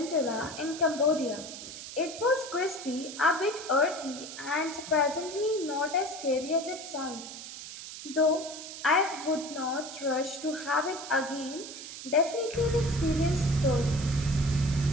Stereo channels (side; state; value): right; noise; hiss, 11 dB below the sound